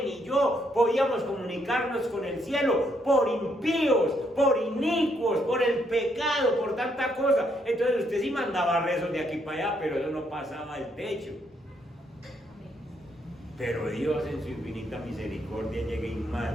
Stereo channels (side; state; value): both; normal; correlation 0.74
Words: ni yo podíamos comunicarnos con el cielo por impíos, por inicuos, por el pecado, por tanta cosa. Entonces usted sí mandaba rezos de aquí para allá, pero eso no pasaba el techo. Pero Dios en su infinita misericordia llega y